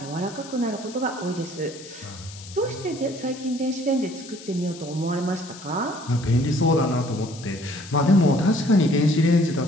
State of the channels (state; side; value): noise; left; hiss, 17 dB below the sound